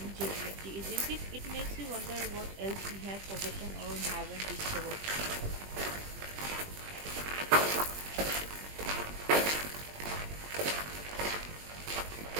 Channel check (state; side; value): late; left; 20 ms